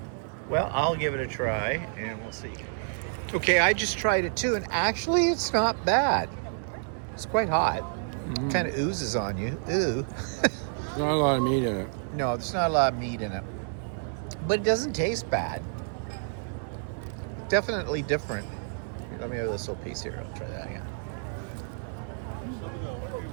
Well, I'll give it a try, and we'll see. Okay, I just tried it too, and actually it's not bad. It's quite hot. It kind of oozes on you. Ooh. There's not a lot of meat in it. No, there's not a lot of meat in it. But it doesn't taste bad. Definitely different. Let me have this little piece here. I'll try that again.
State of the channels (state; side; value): silent; left; 59 dB below the other